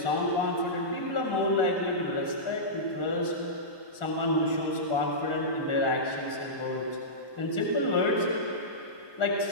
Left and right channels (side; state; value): right; late; 1.4 ms